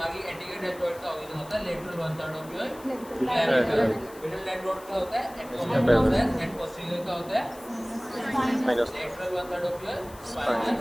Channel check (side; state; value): left; noise; hiss, 21 dB below the sound